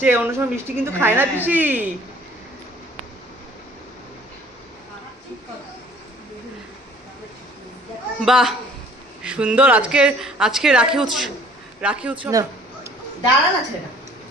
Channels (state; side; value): normal; both; correlation 0.54